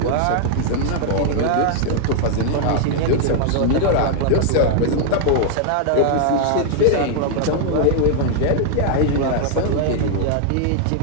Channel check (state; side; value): different; both; correlation 0.00